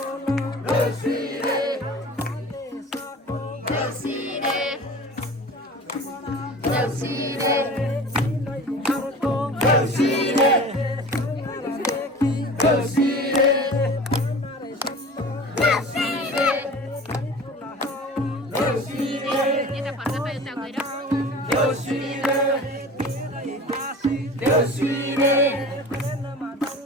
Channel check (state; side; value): normal; both; correlation 0.39